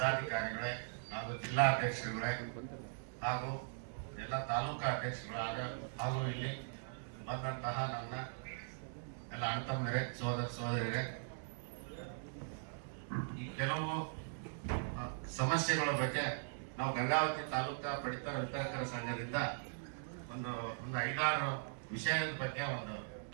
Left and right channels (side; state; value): left; silent; digital silence